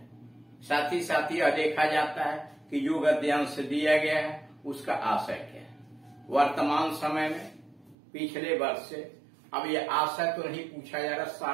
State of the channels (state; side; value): drops out; left; at 8.0 s